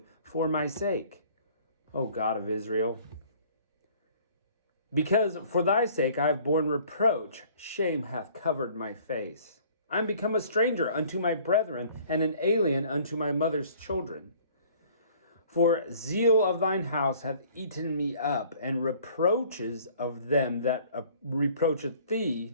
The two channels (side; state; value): both; inverted; correlation -0.54